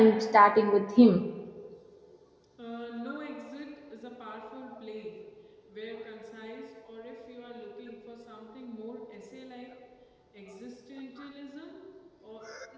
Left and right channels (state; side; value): identical; both; correlation 1.00